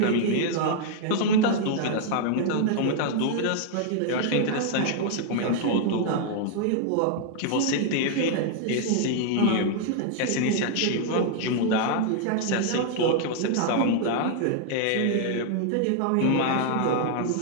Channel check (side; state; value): both; different; correlation 0.00